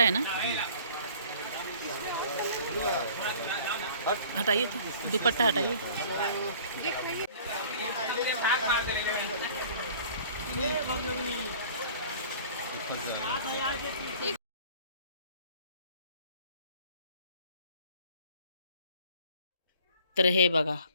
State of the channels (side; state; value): both; inverted; correlation -0.50